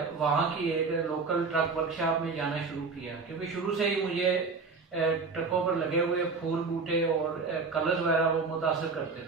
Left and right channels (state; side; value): quieter; left; 4.4 dB